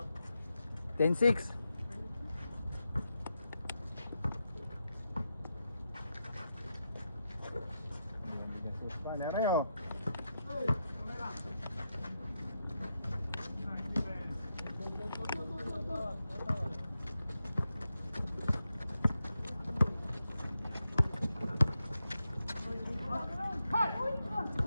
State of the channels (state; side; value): inverted; both; correlation -0.87